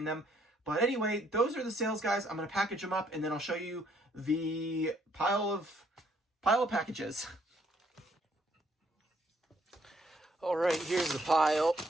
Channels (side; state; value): both; normal; correlation 0.68